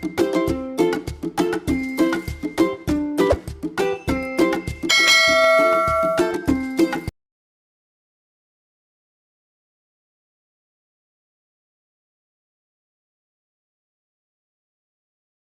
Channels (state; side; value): identical; both; correlation 1.00